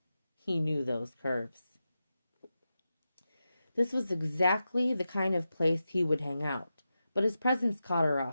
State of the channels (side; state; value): both; inverted; correlation -0.91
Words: He knew those curves. This was exactly the kind of place he would hang out, but his presence caught her